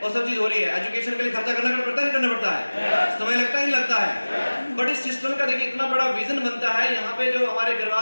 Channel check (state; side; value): inverted; both; correlation -1.00